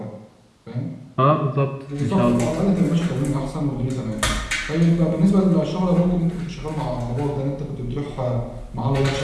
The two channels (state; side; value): identical; both; correlation 1.00